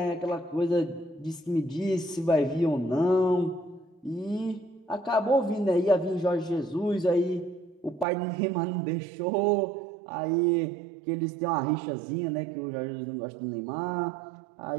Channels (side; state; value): left; drops out; at 8.1 s